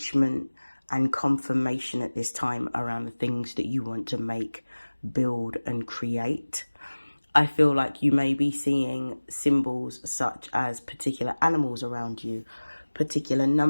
and confirmation at this time around the things that you want to make, build, and create. I feel like you may be seeing symbols such as particular animals around you, particular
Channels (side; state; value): both; inverted; correlation -1.00